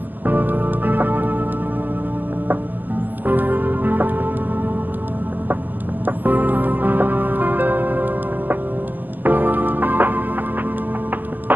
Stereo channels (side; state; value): left; late; 0.086 ms